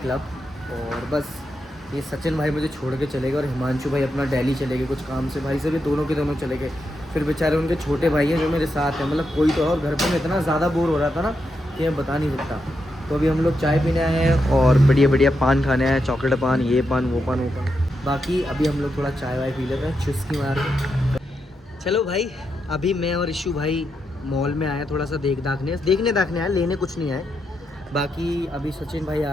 और बस ये सचिन भाई मुझे छोड़ के चले गए और हिमांशु भाई अपना दिल्ली चले गए कुछ काम से। भाई से भी दोनों के दोनों चले गए। फिर बेचारे उनके छोटे भाई हैं जो मेरे साथ हैं, मतलब कोई तो और घर पर मैं इतना ज़्यादा बोर हो रहा था ना कि मैं बता नहीं सकता। तो अभी हम लोग चाय पीने आए हैं और बढ़िया बढ़िया पान खाने आए हैं, चॉकलेट पान, ये पान वो पान वो पान। बाकी अभी हम लोग थोड़ा चाय वाय पी लेते हैं चुस्की मार के। चलो भाई, अभी मैं और इशू भाई मॉल में आए थोड़ा सा देखने आए, लेने कुछ नहीं आए। बाकी अभी सचिन भाई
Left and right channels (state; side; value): normal; both; correlation 0.84